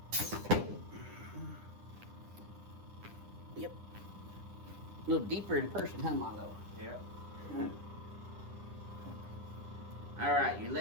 A little deeper in person, huh, Milo? Yeah. All right, your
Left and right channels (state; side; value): late; left; 10 ms